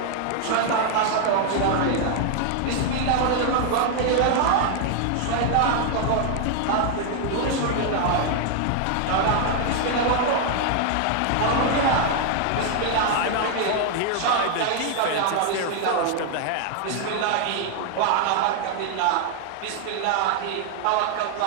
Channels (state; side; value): different; both; correlation 0.00